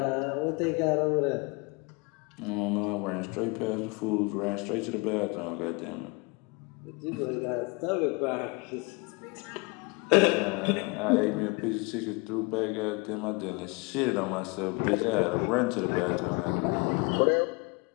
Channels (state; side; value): quieter; right; 28.4 dB